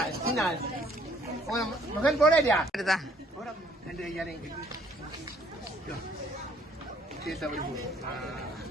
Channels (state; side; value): normal; both; correlation 0.62